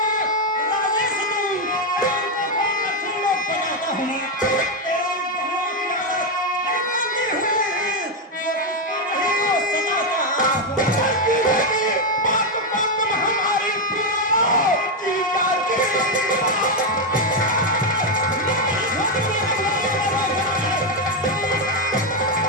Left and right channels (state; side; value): normal; both; correlation 0.04